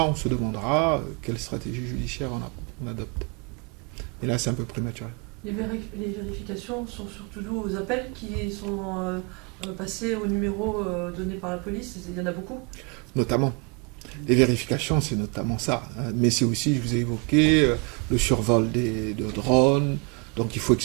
on se demandera quelle stratégie judiciaire on adopte. Et là, c'est un peu prématuré. Les vérifications sont surtout dues aux appels qui sont passés au numéro donné par la police. Il y en a beaucoup. Notamment. Les vérifications, c'est notamment ça. Mais c'est aussi, je vous ai évoqué, le survol de drones. Donc il faut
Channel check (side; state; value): left; quieter; 32.9 dB